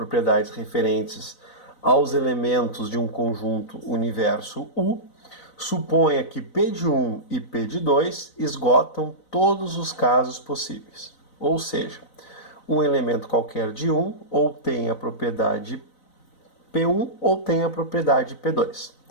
referentes aos elementos de um conjunto universo U, suponha que P de 1 e P de 2 esgotam todos os casos possíveis. Ou seja, um elemento qualquer de 1 ou tem a propriedade P1 ou tem a propriedade P2.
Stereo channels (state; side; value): late; right; 4.0 ms